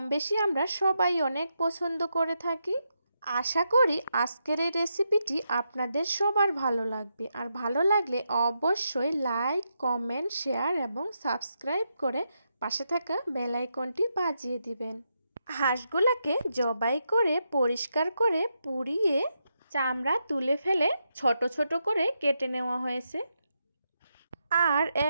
বেশি আমরা সবাই অনেক পছন্দ করে থাকি। আশা করি আজকের এই রেসিপিটি আপনাদের সবার ভালো লাগবে। আর ভালো লাগলে অবশ্যই লাইক, কমেন্ট, শেয়ার এবং সাবস্ক্রাইব করে পাশে থাকা বেল আইকনটি বাজিয়ে দিবেন। হাঁসগুলোকে জবাই করে পরিষ্কার করে পুড়িয়ে চামড়া তুলে ফেলে ছোট ছোট করে কেটে নেওয়া হয়েছে। আর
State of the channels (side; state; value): both; inverted; correlation -0.83